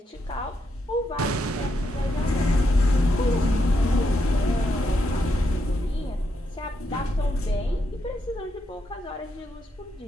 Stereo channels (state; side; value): normal; both; correlation 0.80